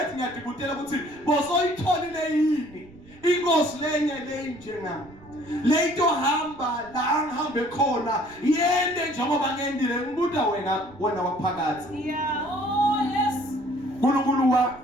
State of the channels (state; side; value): noise; right; rumble, 23 dB below the sound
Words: ngiyadibutela ukuthi bosoyitholile yini inkosi lenye njengami leto hamba la ngihambe khona yende njengoba ngendile ngibuda wena waphakathi uNkulunkulu wa